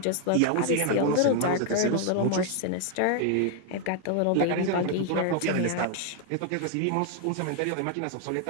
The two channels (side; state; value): both; different; correlation 0.00